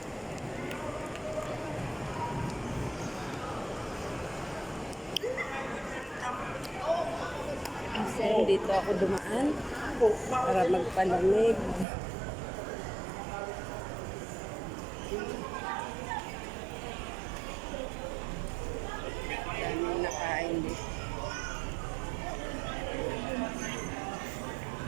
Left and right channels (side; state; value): left; drops out; at 11.9 s